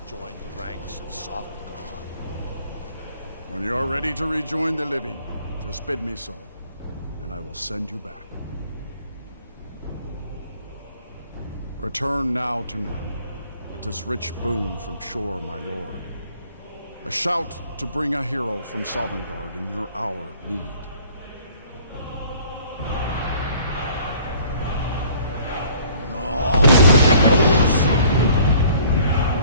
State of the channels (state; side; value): inverted; both; correlation -0.55